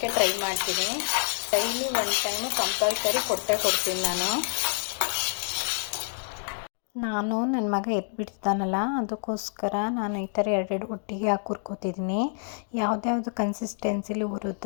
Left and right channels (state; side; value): silent; right; 60 dB below the other